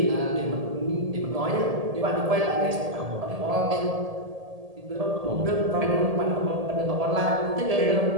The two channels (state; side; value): late; left; 1.7 ms